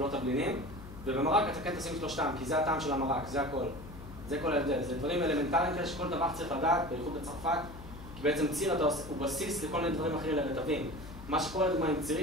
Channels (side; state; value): left; noise; hum, 14 dB below the sound